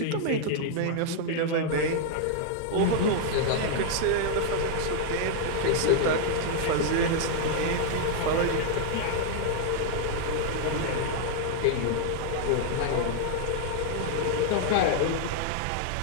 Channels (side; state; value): both; different; correlation 0.00